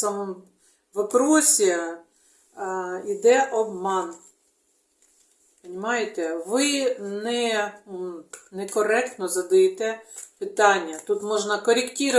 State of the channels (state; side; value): identical; both; correlation 1.00